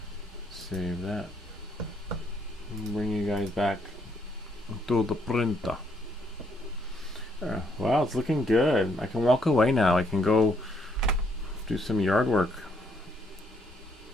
save that. Bring you guys back to the printer. Wow, it's looking good. I can walk away now. I can go do some yard work.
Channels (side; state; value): both; normal; correlation 0.71